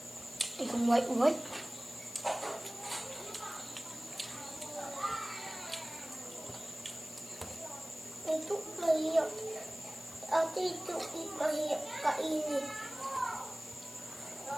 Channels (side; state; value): left; noise; hiss, 15 dB below the sound